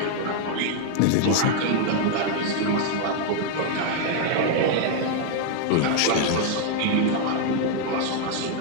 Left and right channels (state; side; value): different; both; correlation 0.00